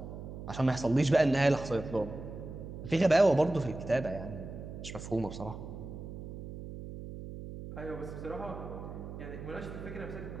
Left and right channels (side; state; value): right; noise; hum, 10 dB below the sound